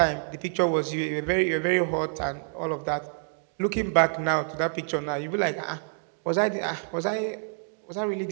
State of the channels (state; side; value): silent; left; 60 dB below the other